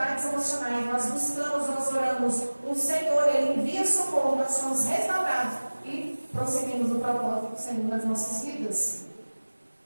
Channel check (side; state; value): both; inverted; correlation -1.00